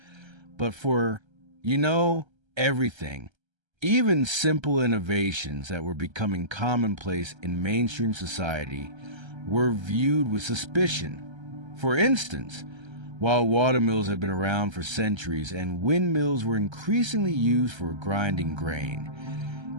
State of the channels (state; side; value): late; left; 1.3 ms